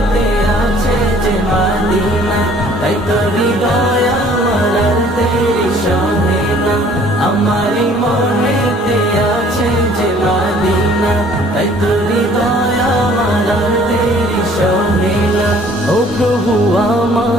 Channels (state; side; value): normal; both; correlation 0.56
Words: আছে যে মদিনা, তাই তো হৃদয় আমার আর দেরি সহে না। আমারি মনেতে আছে যে মদিনা, তাই তো হৃদয় আমার আর দেরি সহে না। ও প্রভু